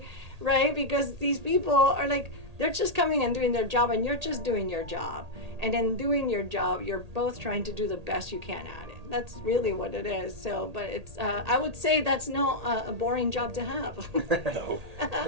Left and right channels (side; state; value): left; late; 1.8 ms